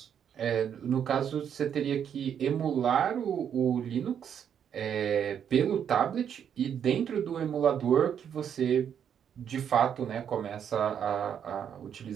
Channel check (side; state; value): left; quieter; 8.5 dB